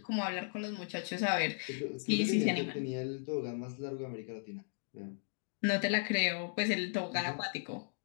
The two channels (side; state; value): right; silent; digital silence